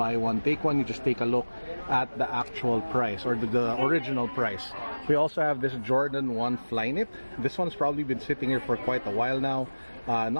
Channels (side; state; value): both; inverted; correlation -1.00